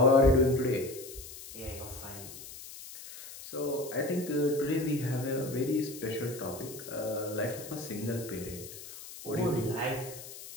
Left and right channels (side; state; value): left; noise; hiss, 14 dB below the sound